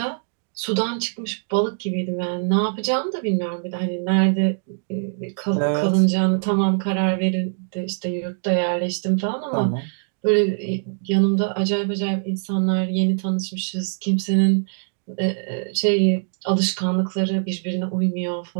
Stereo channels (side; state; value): left; silent; digital silence